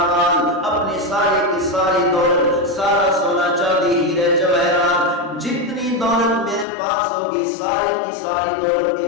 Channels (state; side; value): drops out; right; at 6.7 s